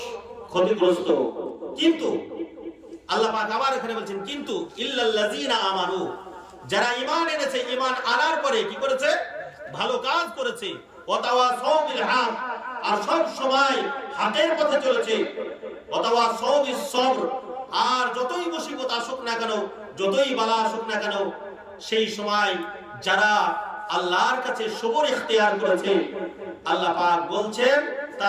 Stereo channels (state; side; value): identical; both; correlation 1.00